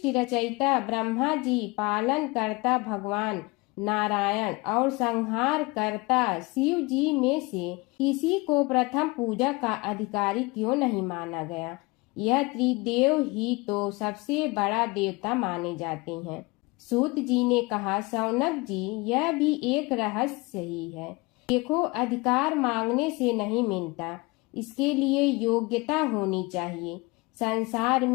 रचयिता ब्रह्मा जी, पालन करता भगवान नारायण और संहार करता शिव जी में से किसी को प्रथम पूजा का अधिकारी क्यों नहीं माना गया। यह त्रिदेव ही तो सबसे बड़ा देवता माने जाते हैं। सूत जी ने कहा, शौनक जी, यह भी एक रहस्य ही है। देखो, अधिकार मांगने से नहीं मिलता, इसके लिए योग्यता होनी चाहिए। संसार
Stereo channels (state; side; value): quieter; right; 24.8 dB